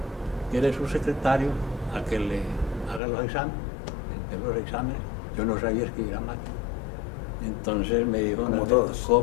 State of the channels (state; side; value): drops out; right; at 3.0 s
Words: que era su secretario, a que le haga los exámenes. Yo no sabía escribir a máquina. Entonces me dijo, como Alberto, todos,